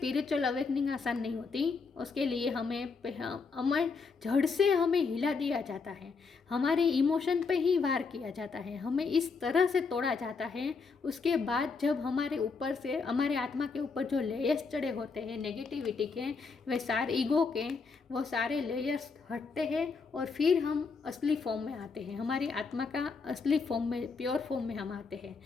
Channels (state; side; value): quieter; right; 4.8 dB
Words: अवेकनिंग आसान नहीं होती। उसके लिए हमें जड़ से हमें हिला दिया जाता है, हमारे इमोशन पे ही वार किया जाता है, हमें इस तरह से तोड़ा जाता है। उसके बाद जब हमारे ऊपर से, हमारे आत्मा के ऊपर जो लेयर्स चढ़े होते हैं नेगेटिविटी के, वे सारे ईगो के, वो सारे लेयर्स हटते हैं और फिर हम असली फॉर्म में आते हैं, हमारी आत्मा का असली फॉर्म में, प्योर फॉर्म में हम आते हैं।